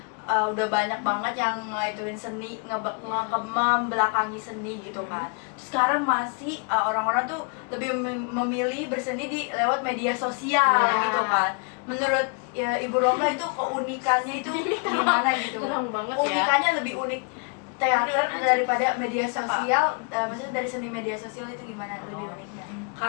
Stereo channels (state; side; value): quieter; right; 35.8 dB